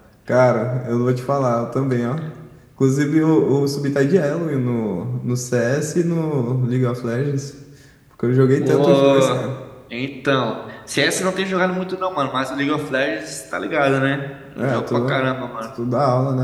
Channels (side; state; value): both; identical; correlation 1.00